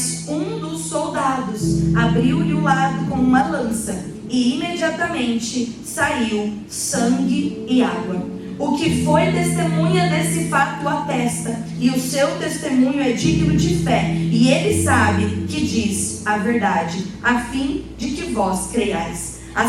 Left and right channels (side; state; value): both; identical; correlation 1.00